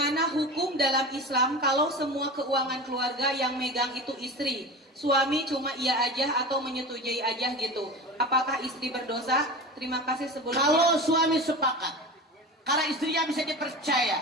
hukum dalam Islam kalau semua keuangan keluarga yang megang itu istri? Suami cuma iya aja atau menyetujui aja gitu. Apakah istri berdosa? Terima kasih sebelumnya. Kalau suami sepakat, karena istrinya bisa dipercaya,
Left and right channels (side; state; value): both; normal; correlation 0.31